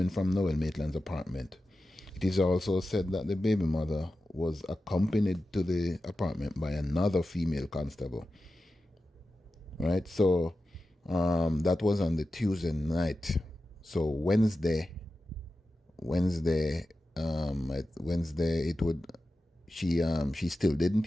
from Noel Maitland's apartment. It is also said that the baby mother was accompanied to the apartment by another female constable. Right? So that was on the Tuesday night. So Wednesday, it would she still didn't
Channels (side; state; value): both; normal; correlation 0.93